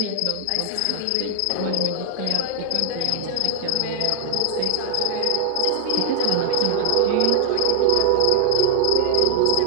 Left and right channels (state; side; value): different; both; correlation 0.00